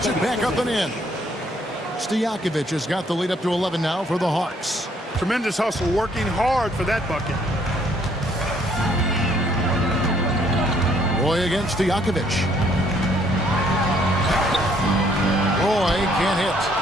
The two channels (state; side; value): normal; both; correlation 0.66